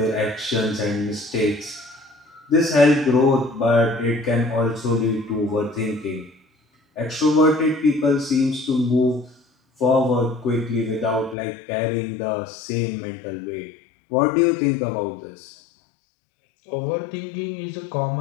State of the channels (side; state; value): right; drops out; at 11.4 s